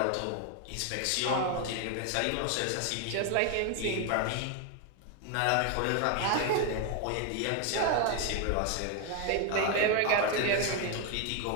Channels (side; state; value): both; different; correlation 0.01